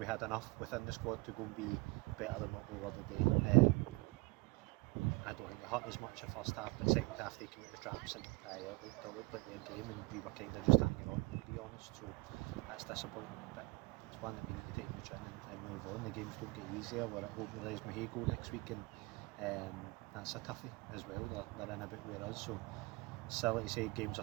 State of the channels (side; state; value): left; quieter; 23.6 dB